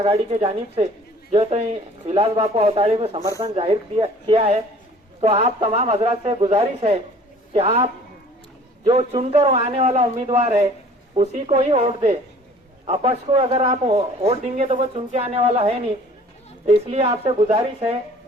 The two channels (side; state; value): both; normal; correlation 0.51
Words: के जानिब से जो है तो विलास बापू अवताड़े को समर्थन जाहिर किया है। तो आप तमाम हजरात से गुजारिश है कि आप जो चुनकर आने वाला उम्मीदवार है उसी को ही वोट दे। अपक्ष को अगर आप वोट देंगे तो वो चुन के आने वाला है नहीं। तो इसलिए आपसे गुजारिश है